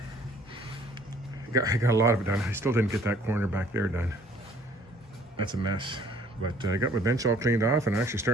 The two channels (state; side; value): normal; both; correlation 0.58